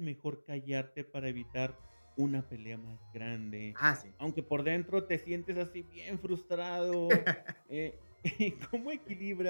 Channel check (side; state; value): both; inverted; correlation -1.00